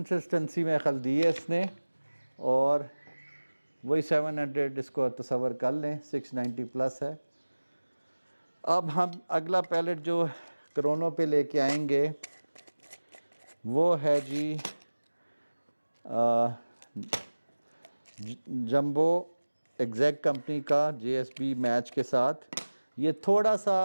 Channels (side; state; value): both; inverted; correlation -1.00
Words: में खल दी है इसने और वही 700 इसको तसव्वुर कर लें, 690 प्लस है। अब हम अगला पैलेट जो क्रोनो पे लेके आएंगे वो है जी जंबो एग्जैक्ट कंपनी का जीएसबी मैच के साथ। ये थोड़ा सा